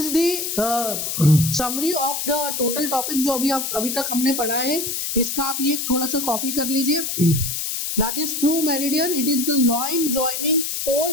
the summary of the total topic जो अभी तक हमने पढ़ा है. इसका आप ये थोड़ा सा कॉपी कर लीजिए. That is true meridian. It is the line joining pole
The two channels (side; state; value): left; noise; hiss, 3 dB below the sound